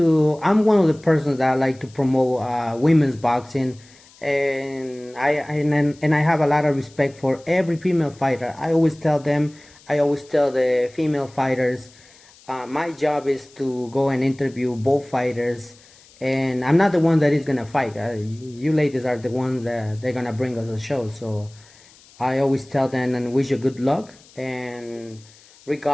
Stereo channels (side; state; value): left; noise; hiss, 26 dB below the sound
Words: one of the persons that I like to promote women's boxing, and I have a lot of respect for every female fighter. I always tell the female fighters, my job is to go and interview both fighters and I'm not the one that is gonna fight. You ladies are the ones that they're gonna bring us a show. So I always tell them and wish you good luck. And